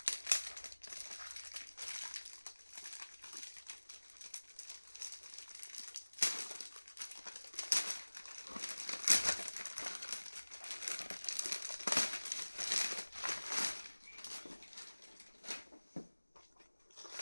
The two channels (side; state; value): both; inverted; correlation -1.00